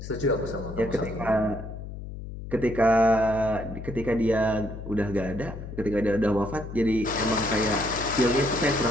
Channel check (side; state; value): left; noise; hum, 10 dB below the sound